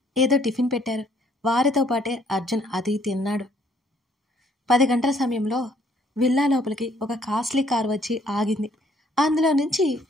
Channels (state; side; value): normal; both; correlation 0.64